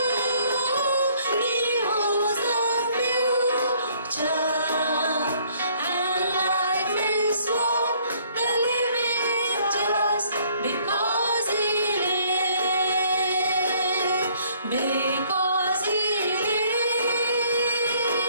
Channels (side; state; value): both; inverted; correlation -0.62